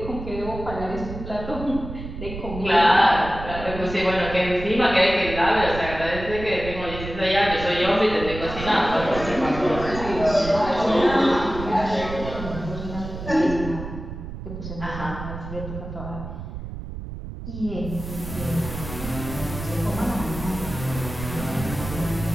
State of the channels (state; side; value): noise; right; rumble, 9 dB below the sound